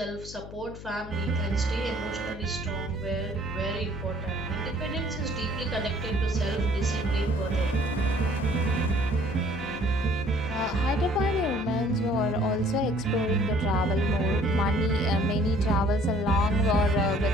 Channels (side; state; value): left; noise; hum, 14 dB below the sound